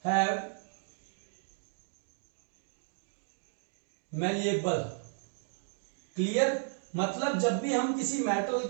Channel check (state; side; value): silent; left; digital silence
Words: have malleable, clear. मतलब जब भी हम किसी मेटल